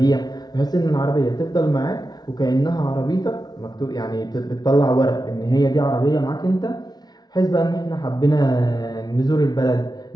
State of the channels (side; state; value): right; late; 0.19 ms